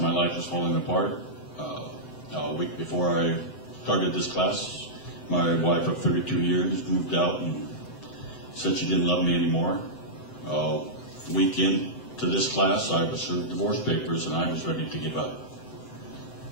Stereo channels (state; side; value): late; right; 7.8 ms